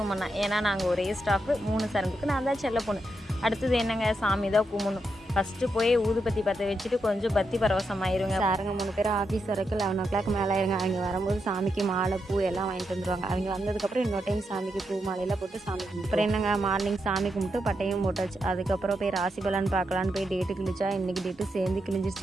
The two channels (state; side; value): normal; both; correlation 0.83